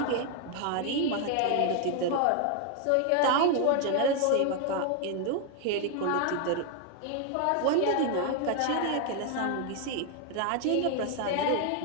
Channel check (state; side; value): different; both; correlation 0.00